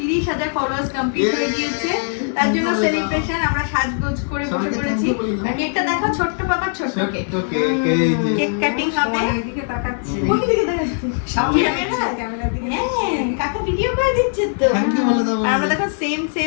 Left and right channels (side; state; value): right; silent; 64 dB below the other